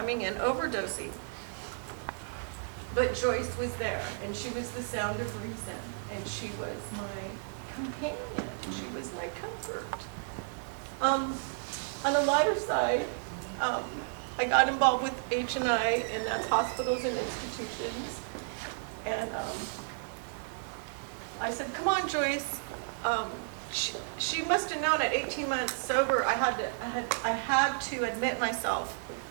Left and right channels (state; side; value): silent; left; digital silence